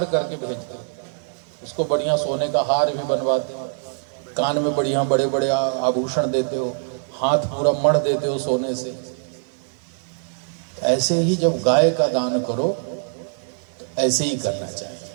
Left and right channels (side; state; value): left; silent; digital silence